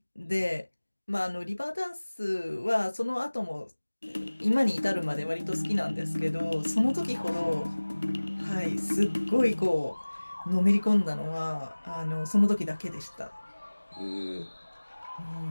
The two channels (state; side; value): inverted; both; correlation -1.00